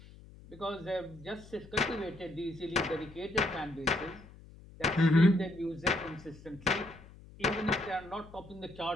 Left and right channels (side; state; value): left; noise; hum, 20 dB below the sound